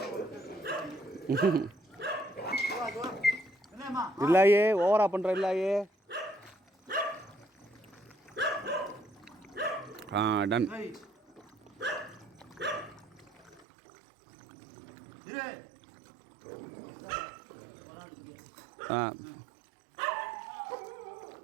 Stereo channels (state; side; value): drops out; left; at 13.7 s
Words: இல்லையே ஓவரா பண்ற இல்லையே. டன்.